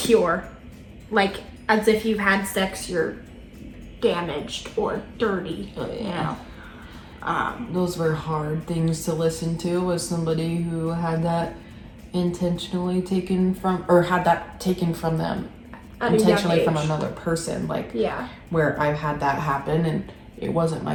Like, as if you've had sex, you're damaged or dirty, you know. Those were hard things to listen to as somebody who had that intentionally taken from, or had that taken from them intentionally from another person. Like, yeah, where I've had that happen and it wasn't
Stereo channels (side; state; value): both; identical; correlation 1.00